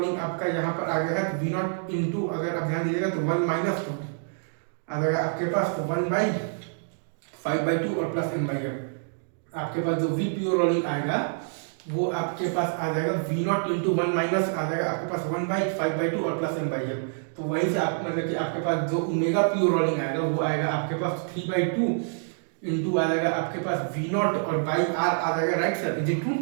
आपका यहाँ पर आ गया है, तो वी नॉट इंटू अगर आप ध्यान दीजिएगा तो 1 माइनस आ जाएगा आपके पास, तो 1/5/2 और प्लस एम बाई एम। आपके पास जो वी प्योर रोलिंग आएगा वो आपके पास आ जाएगा वी नॉट इंटू 1 माइनस आ जाएगा आपके पास 1/5/2 और प्लस एम बाई एम। तो वहीं से आप मतलब कि आपके पास जो ओमेगा प्योर रोलिंग आएगा वो आएगा आपके पास 3/2 इंटू आ जाएगा आपके पास वी नॉट और बाई आर आ जाएगा, right sir, is it true?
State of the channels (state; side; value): silent; left; digital silence